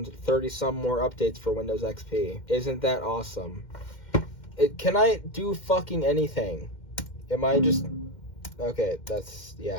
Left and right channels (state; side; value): late; right; 2.1 ms